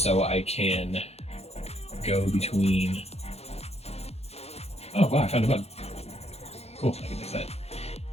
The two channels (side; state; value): right; late; 0.30 ms